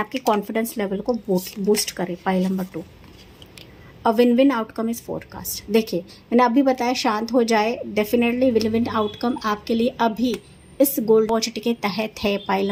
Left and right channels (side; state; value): both; identical; correlation 1.00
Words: कॉन्फिडेंस लेवल को बूस्ट करे। Pile number 2, a win win outcome is forecast. देखिए मैंने अभी बताया शांत हो जाए, डेफिनेटली विन विन आउटकम आपके लिए अभी इस गोल्ड अपॉर्चुनिटी के तहत है। पाइल